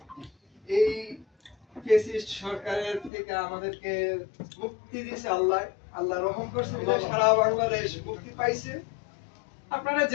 এই ফেসিস্ট সরকারের থেকে আমাদেরকে মুক্তি দিয়েছে আল্লাহ। আল্লাহ রহম করছে বলে সারা বাংলাদেশ মুক্তি পাইছে। আপনারা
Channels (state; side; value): drops out; right; at 3.1 s